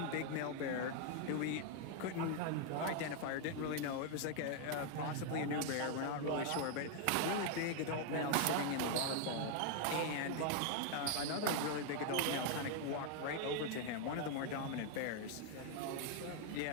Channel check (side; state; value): both; different; correlation 0.00